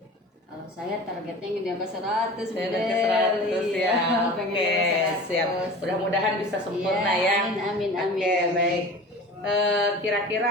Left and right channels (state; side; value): normal; both; correlation 0.37